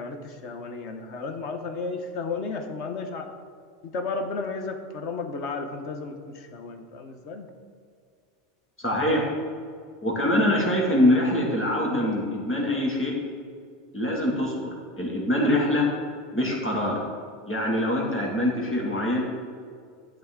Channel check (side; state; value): both; normal; correlation 0.34